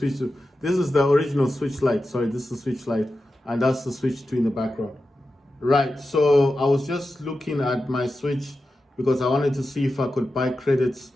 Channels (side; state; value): both; normal; correlation 0.92